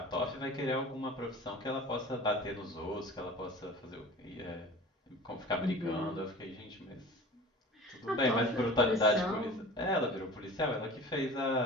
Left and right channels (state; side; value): normal; both; correlation 0.40